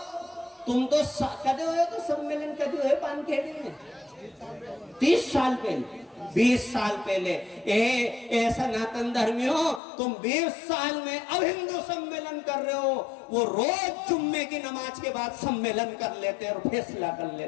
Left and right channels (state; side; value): drops out; right; at 9.8 s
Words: तुम तो कदे हुए तो सम्मेलन कदे हुए पानखेड़ी में 30 साल पहले, 20 साल पहले। ए सनातन धर्मियों, तुम 20 साल में अब हिंदू सम्मेलन कर रहे हो, वो रोज जुम्मे की नमाज के बाद सम्मेलन कर लेते और फैसला कर